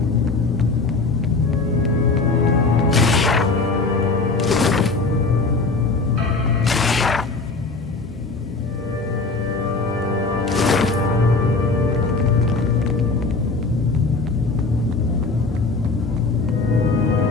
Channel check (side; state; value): right; quieter; 3.8 dB